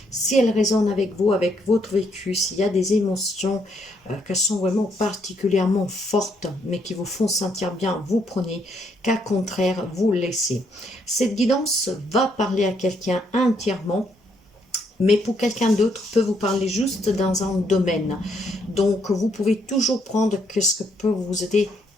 Si elle résonne avec vous, avec votre vécu, s'il y a des émotions qui sont vraiment particulièrement fortes, mais qui vous font sentir bien, vous prenez, qu'à contraire, vous laissez. Cette guidance va parler à quelqu'un entièrement, mais pour quelqu'un d'autre peut vous parler juste dans un domaine. Donc, vous pouvez toujours prendre ce que peut vous aider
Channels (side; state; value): both; normal; correlation 0.72